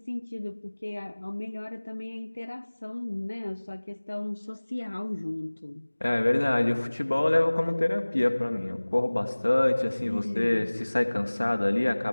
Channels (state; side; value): inverted; both; correlation -1.00